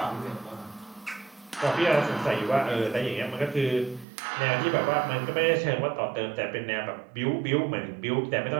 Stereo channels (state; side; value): drops out; left; at 4.0 s